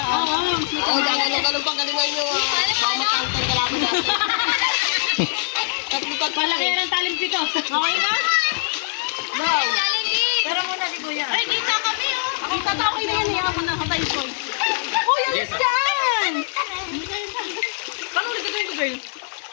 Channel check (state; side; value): silent; right; digital silence